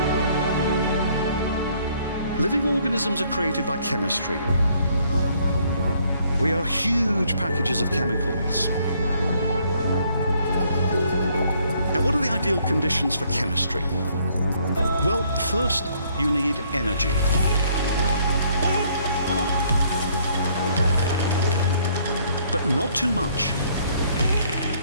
Living organisms are created by chemistry. We are huge packages of chemicals. Now, what are the ideal conditions for chemistry? Well, first, you need energy. But not too much.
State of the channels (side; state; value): both; inverted; correlation -0.65